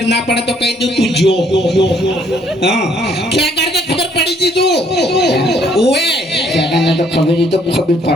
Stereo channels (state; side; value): normal; both; correlation 0.65